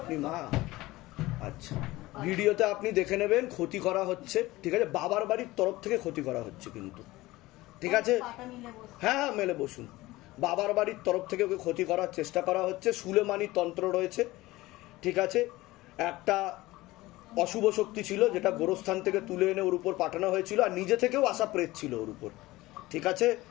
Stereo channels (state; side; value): quieter; right; 18.9 dB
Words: মা? আচ্ছা, ভিডিওতে আপনি দেখে নেবেন ক্ষতি করা হচ্ছে, ঠিক আছে? বাবার বাড়ির তরফ থেকে ক্ষতি করা হচ্ছে কিন্তু, ঠিক আছে? হ্যাঁ হ্যাঁ, মেলে বসুন। বাবার বাড়ির তরফ থেকে ওকে ক্ষতি করার চেষ্টা করা হচ্ছে। সুলেমানি তন্ত্র রয়েছে, ঠিক আছে? একটা অশুভ শক্তি ছিল যেটা গোরস্থান থেকে তুলে এনে ওর উপর পাঠানো হয়েছিল, আর নিজে থেকেও আসা প্রেত ছিল ওর উপর, ঠিক আছে?